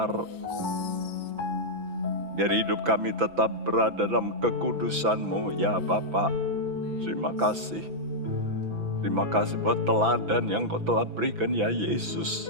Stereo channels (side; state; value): left; late; 6.0 ms